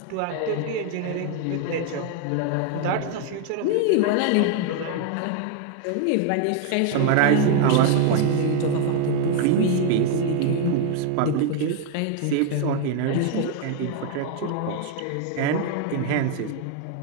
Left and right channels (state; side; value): different; both; correlation 0.00